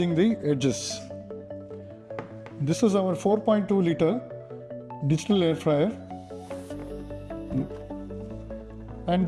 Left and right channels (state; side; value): identical; both; correlation 1.00